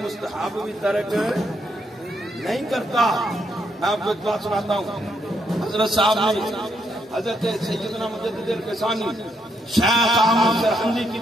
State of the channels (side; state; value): both; normal; correlation 0.77